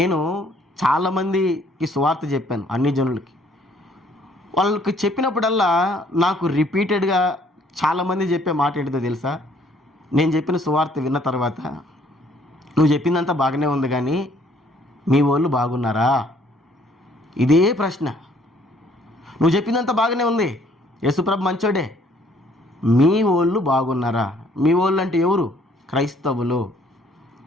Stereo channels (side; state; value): both; normal; correlation 0.62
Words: చాలామందికి సువార్త చెప్పాను, అన్ని జనులకి. వాళ్ళకి చెప్పినప్పుడల్లా నాకు రిపీటెడ్గా చాలామంది చెప్పే మాట ఏంటిదో తెలుసా? నేను చెప్పిన సువార్త విన్న తర్వాత, నువ్వు చెప్పిందంతా బాగానే ఉంది కానీ మీ వాళ్ళు బాగున్నారా? ఇదే ప్రశ్న. నువ్వు చెప్పిందంతా బాగానే ఉంది, యేసుప్రభు మంచోడే, మీ వాళ్ళు బాగున్నారా? మీ వాళ్ళు అంటే ఎవరు? క్రైస్తవులు.